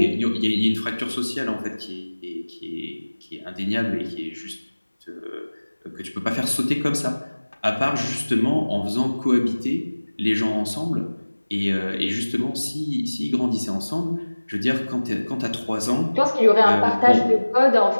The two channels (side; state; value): both; inverted; correlation -1.00